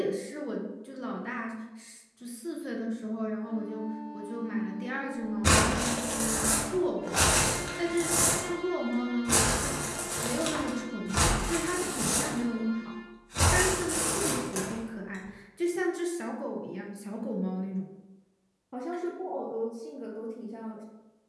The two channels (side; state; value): both; identical; correlation 1.00